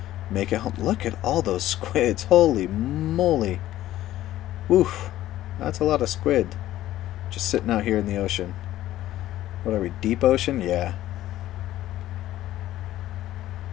make it home. Look at all those squids. Holy moly. Woof. That's a lot of squid. Just sitting out here in the ocean. What are we, deep ocean? Yeah.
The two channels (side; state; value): right; quieter; 14.2 dB